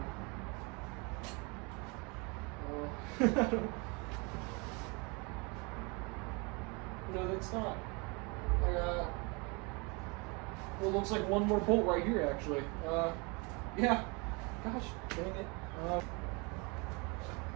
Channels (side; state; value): left; quieter; 29.8 dB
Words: No, that's not. I got, well, it looks like one more bolt right here, actually. Yeah. Gosh, dang it.